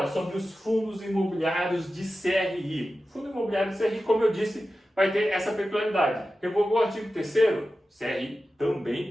sobre os fundos imobiliários de CRI. Fundo imobiliário de CRI, como eu disse, vai ter essa peculiaridade. Revogou o artigo 3º, CRI também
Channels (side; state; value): both; normal; correlation 0.93